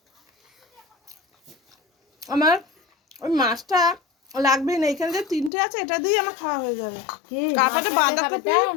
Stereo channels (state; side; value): drops out; right; at 5.5 s